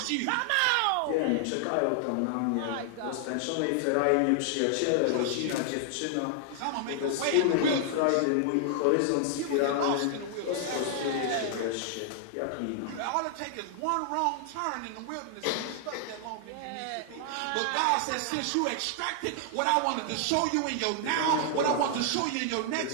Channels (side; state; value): both; different; correlation 0.00